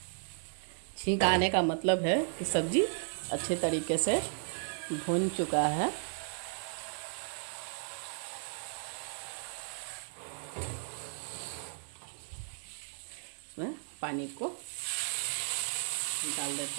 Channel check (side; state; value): left; silent; digital silence